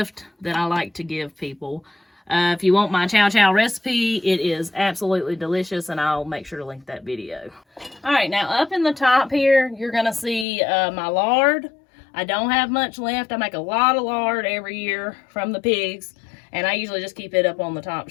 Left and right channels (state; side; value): drops out; right; at 10.5 s